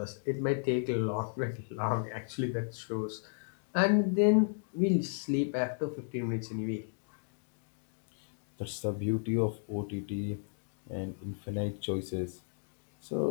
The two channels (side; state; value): right; silent; digital silence